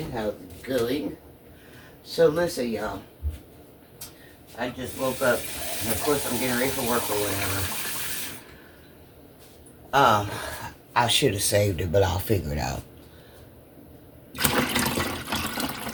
How's it going? So listen, y'all. I just woke up, and of course I'm getting ready for work or whatever. I should have saved it, but I'll figure it out.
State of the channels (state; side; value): identical; both; correlation 1.00